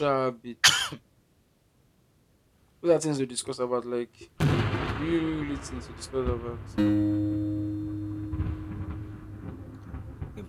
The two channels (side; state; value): both; identical; correlation 1.00